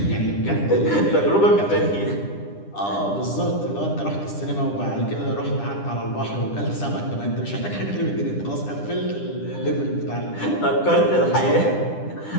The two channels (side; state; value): right; late; 9.9 ms